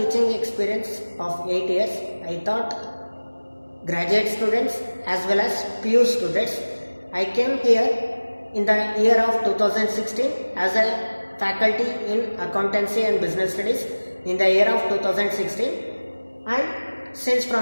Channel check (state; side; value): inverted; both; correlation -1.00